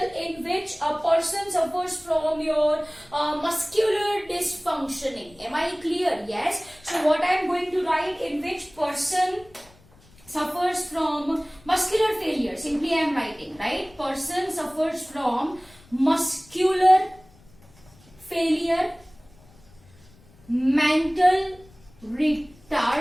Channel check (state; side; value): noise; left; rumble, 27 dB below the sound